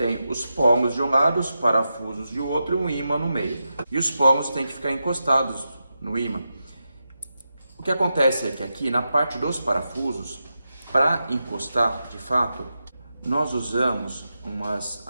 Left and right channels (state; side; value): inverted; both; correlation -0.89